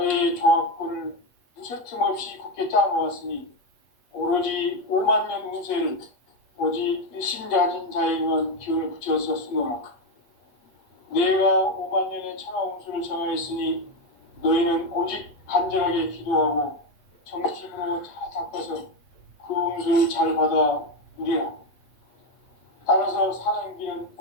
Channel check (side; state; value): right; late; 8.1 ms